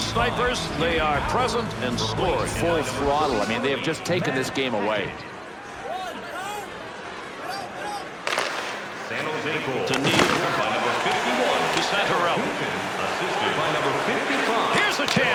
they are present and scoring. Full throttle. I mean, they have just taken this game away. San Jose goal. To Neal. By number 51. To Santorelli. Assisted by number 55. Here's a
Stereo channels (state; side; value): identical; both; correlation 1.00